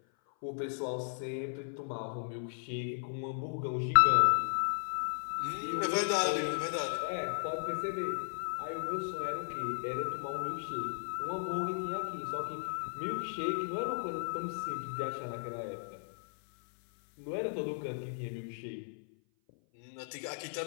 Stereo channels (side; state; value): right; silent; 54 dB below the other